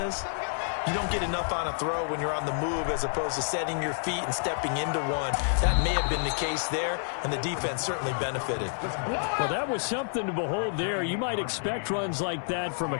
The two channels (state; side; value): silent; right; 59 dB below the other